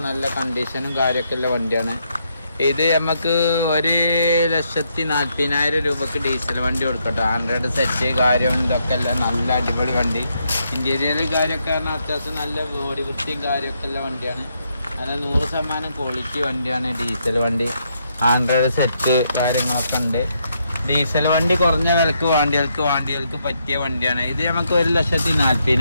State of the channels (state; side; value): inverted; both; correlation -0.77